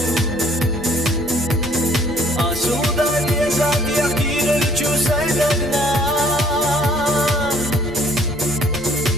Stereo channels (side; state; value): both; normal; correlation 0.59